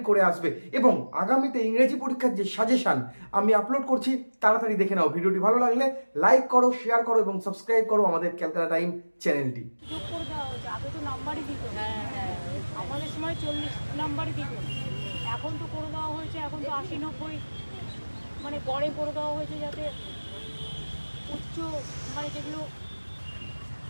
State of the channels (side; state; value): both; inverted; correlation -1.00